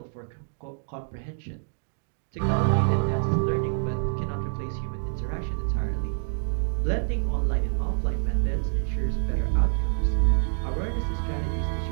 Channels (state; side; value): silent; left; digital silence